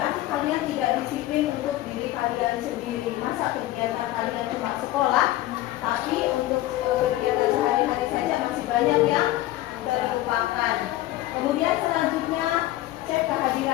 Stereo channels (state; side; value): quieter; right; 15.8 dB